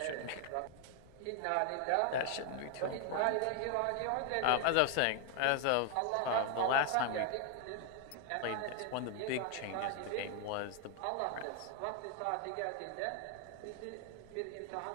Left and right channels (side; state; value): both; different; correlation 0.00